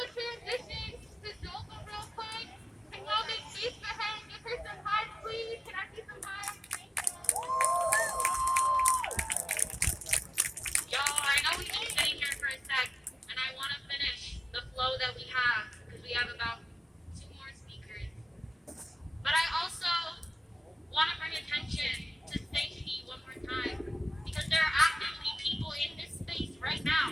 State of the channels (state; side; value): normal; both; correlation 0.96